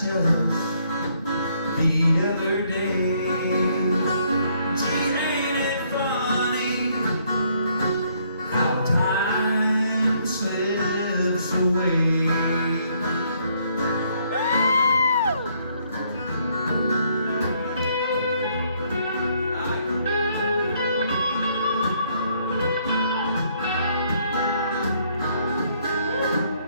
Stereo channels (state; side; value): inverted; both; correlation -0.68